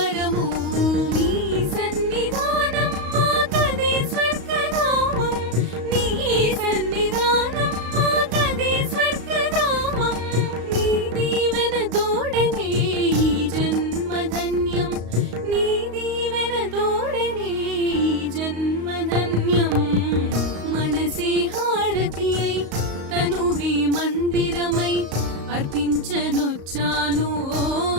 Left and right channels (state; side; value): late; left; 35 ms